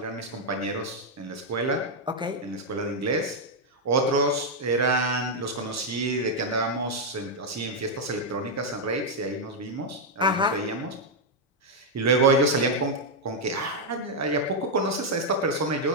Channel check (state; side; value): normal; both; correlation -0.01